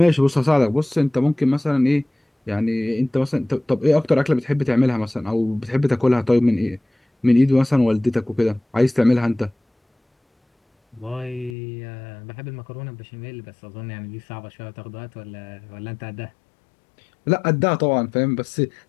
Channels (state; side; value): drops out; right; at 11.5 s